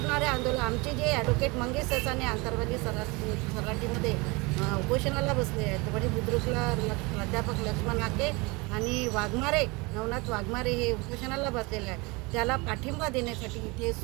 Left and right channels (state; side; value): quieter; left; 26.2 dB